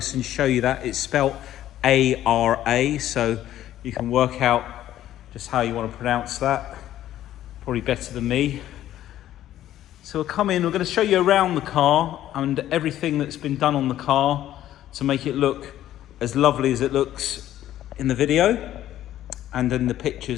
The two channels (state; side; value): quieter; right; 12.7 dB